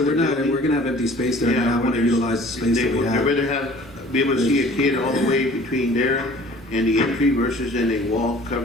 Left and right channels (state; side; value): normal; both; correlation 0.49